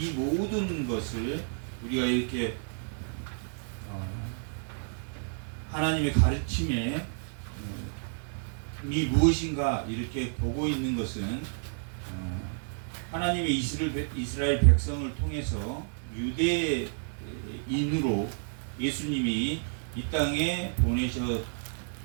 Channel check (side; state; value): left; silent; digital silence